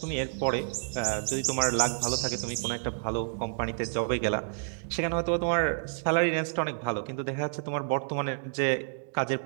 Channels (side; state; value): left; silent; digital silence